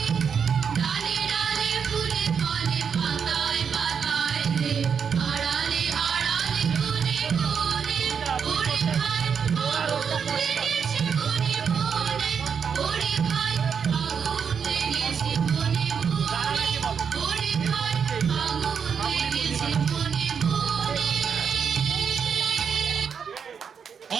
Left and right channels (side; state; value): left; quieter; 6.8 dB